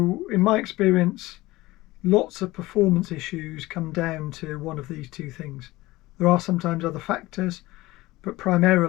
in my experience, lots of performance issues come down to one of these two things. There are sometimes other factors, but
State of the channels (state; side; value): quieter; right; 19.1 dB